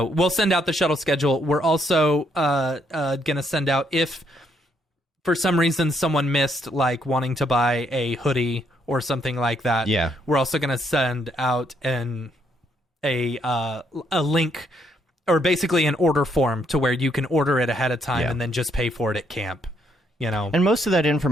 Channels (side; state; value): both; normal; correlation 0.72